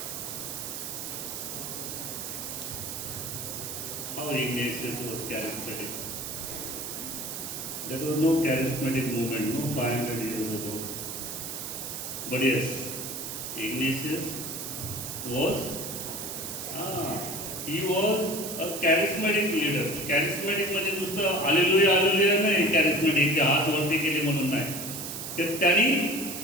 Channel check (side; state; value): right; noise; hiss, 6 dB below the sound